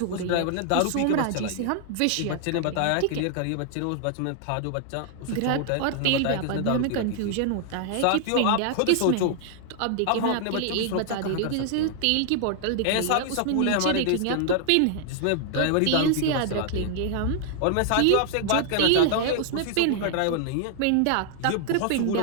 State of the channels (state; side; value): different; both; correlation 0.00